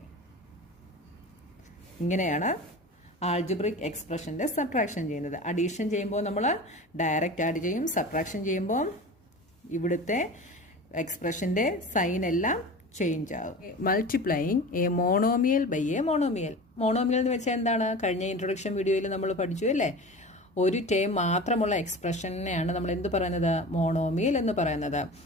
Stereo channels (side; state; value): both; normal; correlation 0.34